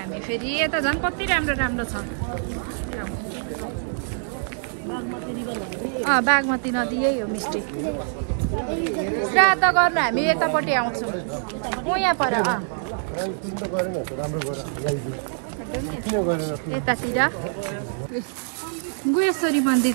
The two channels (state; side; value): silent; left; 62 dB below the other